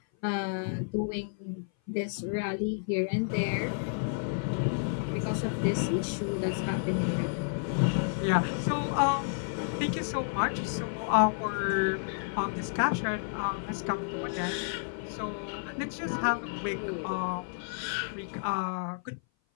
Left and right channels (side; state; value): right; silent; 56 dB below the other